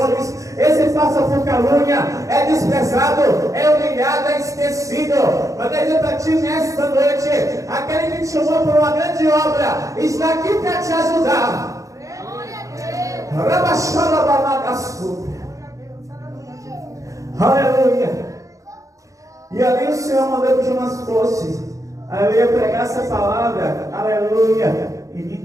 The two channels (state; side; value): late; left; 0.16 ms